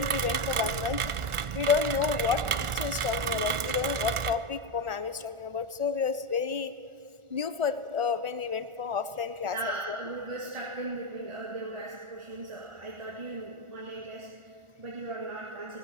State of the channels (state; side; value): late; left; 1.4 ms